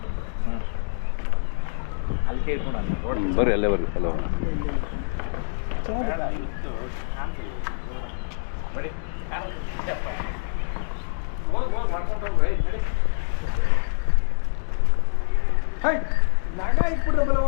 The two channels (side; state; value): right; silent; digital silence